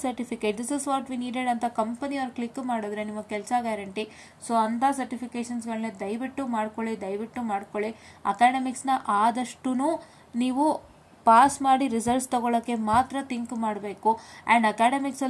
certificate. This is what we needed ಅಂತ company ಅವ್ರು click ಮಾಡಿದ್ರೆ ನಿಮ್ಮ ಕೆಲಸ ಗ್ಯಾರಂಟಿ. ಸೊ ಅಂಥ ಸರ್ಟಿಫಿಕೇಷನ್ಸ್ಗಳನ್ನ ದಯವಿಟ್ಟು ಮಾಡ್ಕೊಳ್ಳಿ. ಅಕಾಡೆಮಿಕ್ಸ್ನ ಆದಷ್ಟು ನೀವು ಪಾಸ್ ಮಾಡಿ ರಿಸಲ್ಟ್ಸ್ ತಗೊಳ್ಳೋಕ್ಕೆ ಮಾತ್ರ ಥಿಂಕ್ ಮಾಡಬೇಕು. ಆ್ಯಂಡ್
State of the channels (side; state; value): both; identical; correlation 1.00